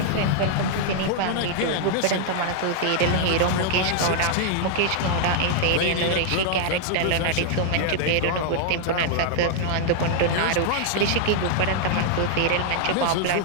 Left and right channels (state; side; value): different; both; correlation 0.00